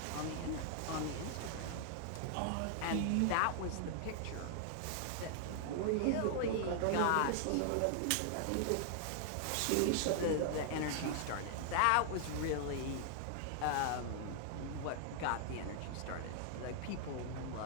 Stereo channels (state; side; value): different; both; correlation 0.00